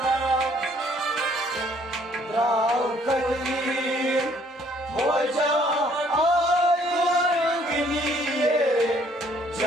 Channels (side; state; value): both; normal; correlation 0.62